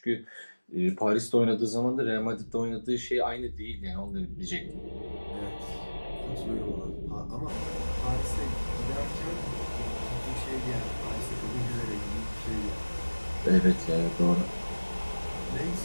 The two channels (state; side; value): inverted; both; correlation -1.00